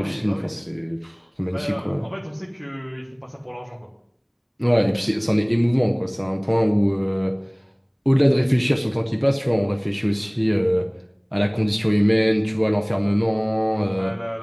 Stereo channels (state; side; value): identical; both; correlation 1.00